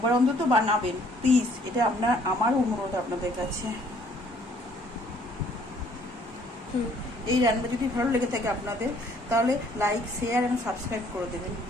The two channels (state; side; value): normal; both; correlation 0.61